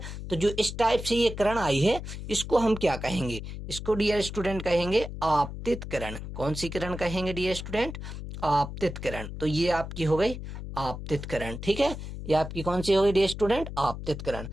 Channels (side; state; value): left; noise; hum, 8 dB below the sound